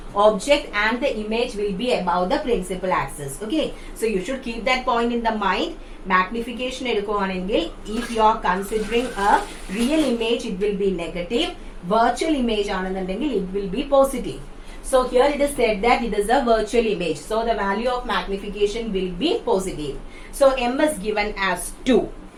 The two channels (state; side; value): identical; both; correlation 1.00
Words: Object and the image will be above the principal axis. Okay, so you should keep that point in the mind. Magnification എടുക്കുവാണെങ്കിൽ if you are considering a real image, it will be negative. Virtual image ആണെന്നുണ്ടെങ്കിൽ it will be positive. So here it is said that it is a virtual image. So the value of magnification will be positive. So M is given as 2.